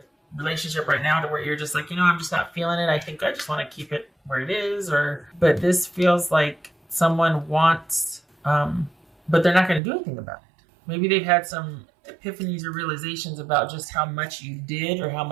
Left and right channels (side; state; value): left; drops out; at 9.8 s